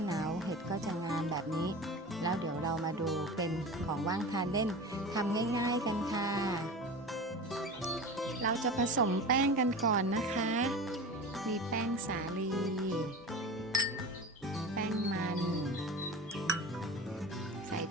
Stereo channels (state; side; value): normal; both; correlation 0.31